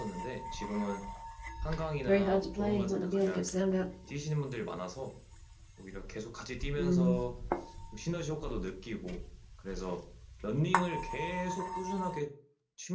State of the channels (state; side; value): identical; both; correlation 1.00